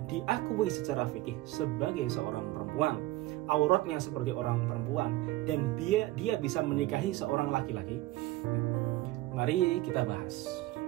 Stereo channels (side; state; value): left; quieter; 17.5 dB